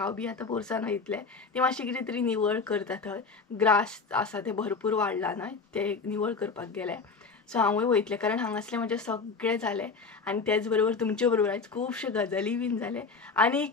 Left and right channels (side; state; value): right; quieter; 4.7 dB